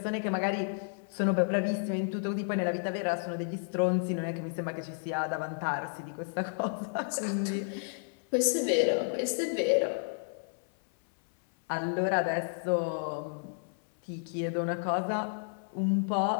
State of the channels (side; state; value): right; silent; 57 dB below the other